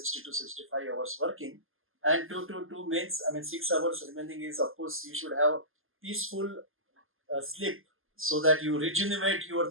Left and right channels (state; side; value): late; left; 0.60 ms